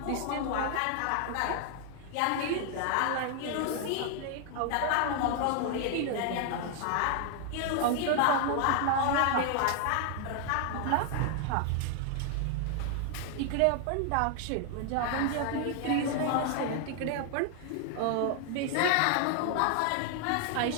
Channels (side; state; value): both; different; correlation 0.00